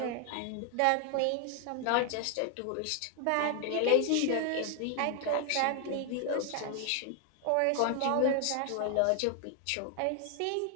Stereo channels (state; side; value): different; both; correlation 0.00